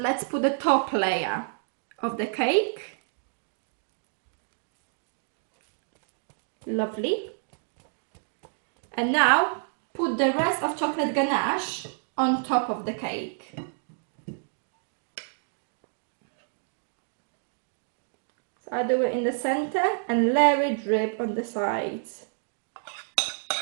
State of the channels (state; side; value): silent; left; digital silence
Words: put the top layer of the cake. Lovely. And now put the rest of chocolate ganache on top of the cake. So I do it in the center and let it drip on the sides.